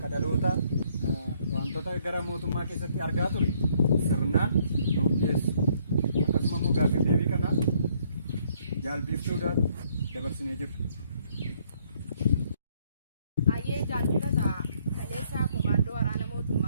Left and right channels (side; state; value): both; inverted; correlation -0.67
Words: dhalootaa wantoota gara mootummaa keessatti argaa ture sirnaan nuuf dhiyeessu. Akkasuma immoo gaaffii deebii kana jaalbiiftuudhaan dabarsinee jirra. Ayyee jaalbifata kaleessa komaandoo waraana